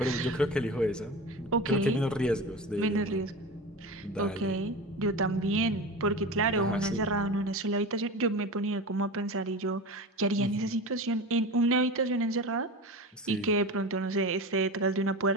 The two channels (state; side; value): normal; both; correlation 0.29